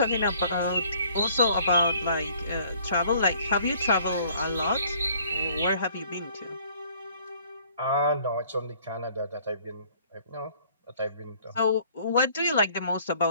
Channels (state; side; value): inverted; both; correlation -0.57